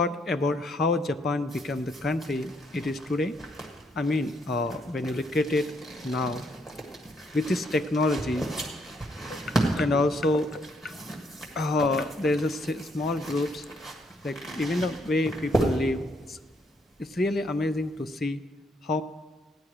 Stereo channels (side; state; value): both; normal; correlation 0.72